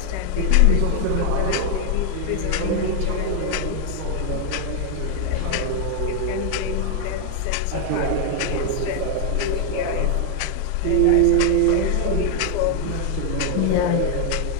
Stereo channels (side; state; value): both; different; correlation 0.00